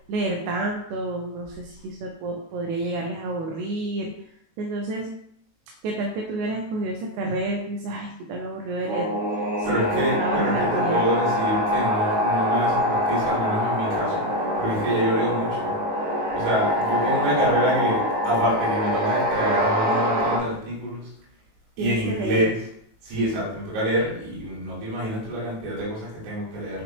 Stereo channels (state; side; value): late; left; 19 ms